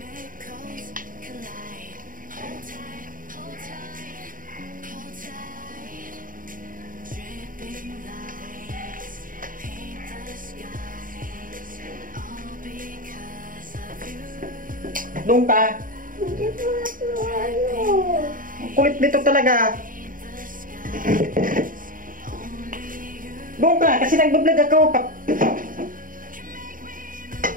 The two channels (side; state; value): left; late; 0.40 ms